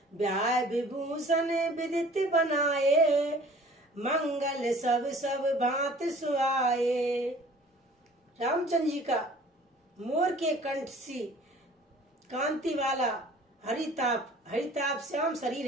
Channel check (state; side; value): normal; both; correlation 0.50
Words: ब्याह विभूषण विदित बनाए, मंगल सब भांत सुहाए। रामचंद्र जी का मोर के कंठ सी कांति वाला हरिताप श्याम शरीर